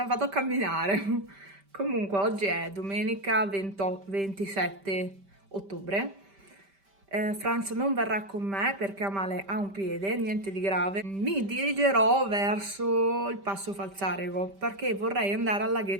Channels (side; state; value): left; late; 5.1 ms